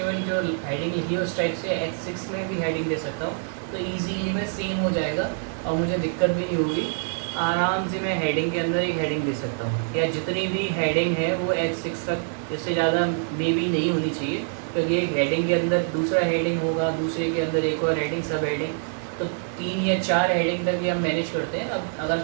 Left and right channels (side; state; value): left; silent; 61 dB below the other